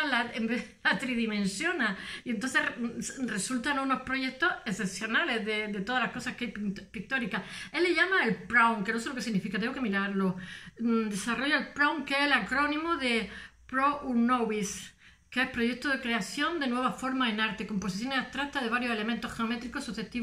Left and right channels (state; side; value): identical; both; correlation 1.00